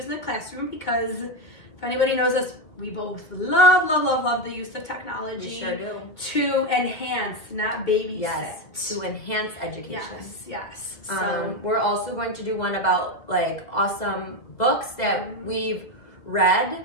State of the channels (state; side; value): late; right; 2.2 ms